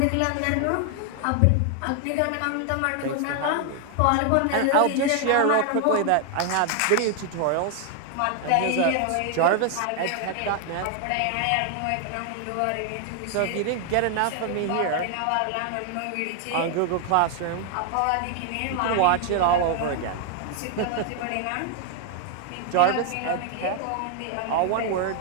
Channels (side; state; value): both; different; correlation 0.00